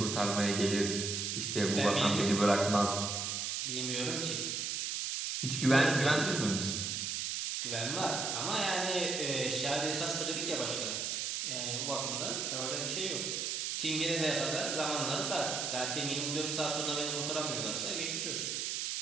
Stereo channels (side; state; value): right; noise; hiss, 1 dB below the sound